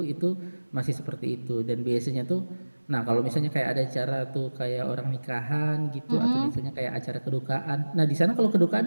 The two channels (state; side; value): inverted; both; correlation -1.00